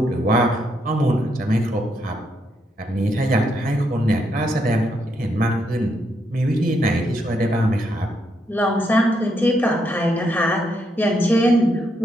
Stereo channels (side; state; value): both; normal; correlation 0.78